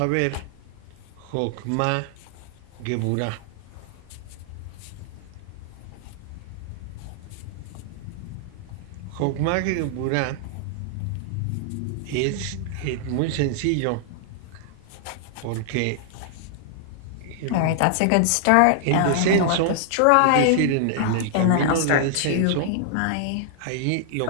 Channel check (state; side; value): different; both; correlation -0.01